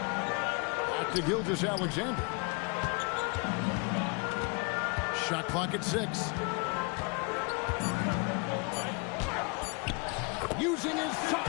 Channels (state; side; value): quieter; right; 31.7 dB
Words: Back to Gilgeous-Alexander. Shot clock at 6. Using his